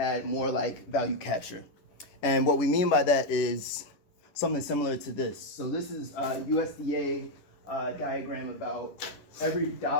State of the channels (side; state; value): right; late; 11 ms